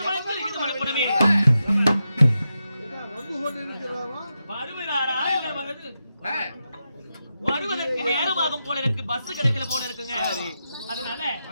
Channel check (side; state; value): both; inverted; correlation -0.88